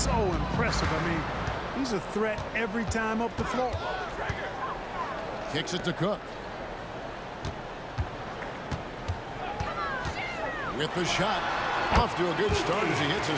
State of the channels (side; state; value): both; identical; correlation 1.00